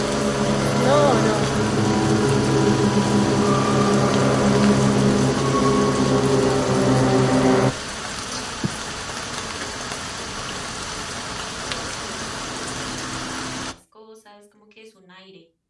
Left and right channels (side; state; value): both; identical; correlation 1.00